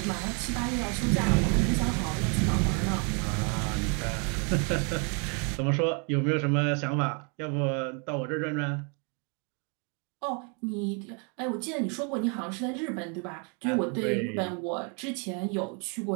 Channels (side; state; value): left; quieter; 37.0 dB